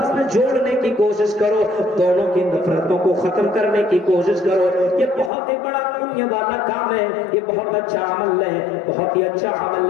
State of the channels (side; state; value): right; drops out; at 5.3 s